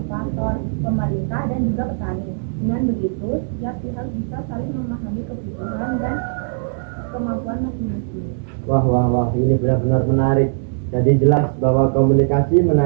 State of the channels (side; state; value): left; silent; digital silence